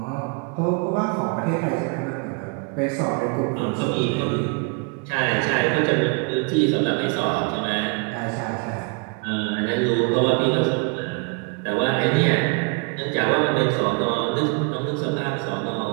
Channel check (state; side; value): quieter; left; 34.9 dB